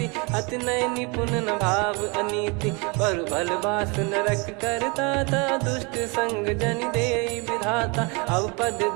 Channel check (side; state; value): left; quieter; 30.2 dB